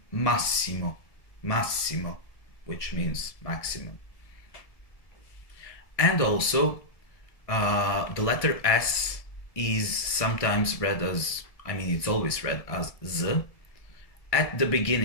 massimo, massimo, which means maximum. And also, the letter S is sometimes read as, it's always read as Z at the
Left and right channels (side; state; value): right; late; 1.7 ms